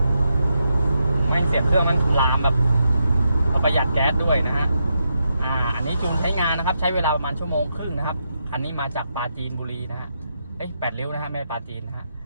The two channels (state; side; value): inverted; both; correlation -0.83